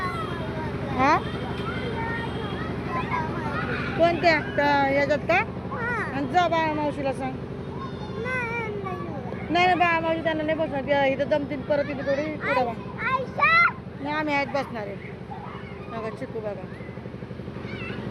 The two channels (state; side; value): identical; both; correlation 1.00